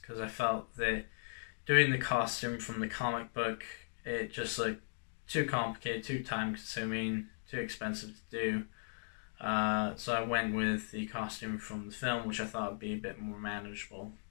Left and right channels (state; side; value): silent; right; digital silence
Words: because I felt that doing the costume from the comic book, it just looked too complicated, too time consuming, too expensive to do. So I went with the costume from the film, which I thought would be a bit more manageable